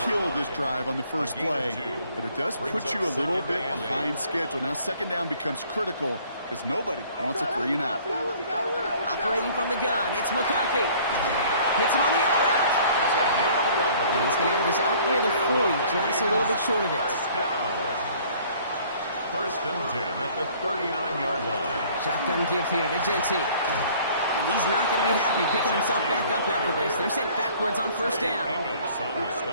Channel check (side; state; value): both; inverted; correlation -0.55